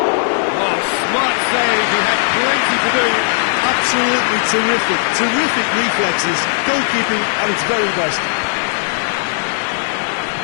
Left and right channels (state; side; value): silent; right; digital silence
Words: Oh, smart save, he had plenty to do. Absolutely terrific, terrific reflexes, goalkeeping at its very best.